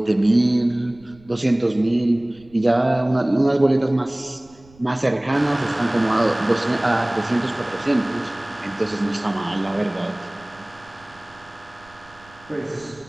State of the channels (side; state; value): right; noise; rumble, 27 dB below the sound